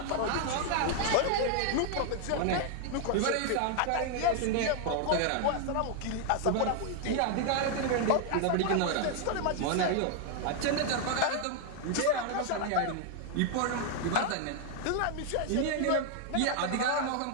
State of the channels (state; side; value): different; both; correlation 0.00